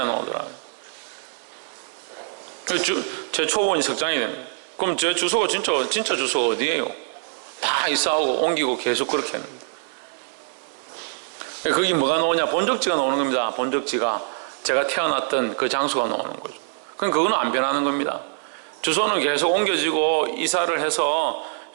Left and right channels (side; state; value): left; silent; 63 dB below the other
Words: 나오더라고요. 제 초본이 석장이 됩니다. 그럼 제 주소가 진짜 주소가 어디예요? 다 이사하고 옮기고 계속 그렇게 했는데. 거기 뭐가 나오냐? 본적지가 나오는 겁니다. 본적지가 제가 태어났던 그 장소가 나오는 거죠. 그럼 그거는 안 변하는 겁니다. 주소는 계속 옮겨지고 이사를 해서